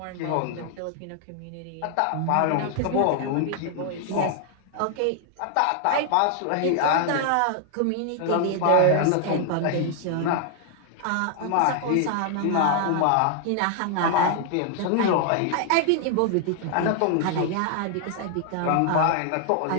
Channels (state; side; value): different; both; correlation 0.00